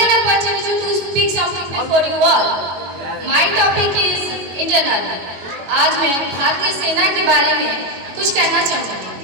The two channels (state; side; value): late; left; 22 ms